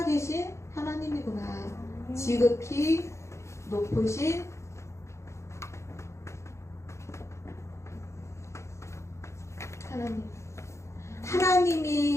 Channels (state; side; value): late; right; 0.14 ms